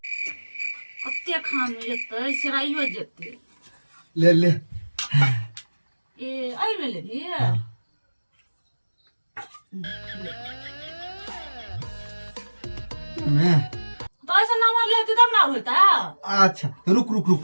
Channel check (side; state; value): both; inverted; correlation -1.00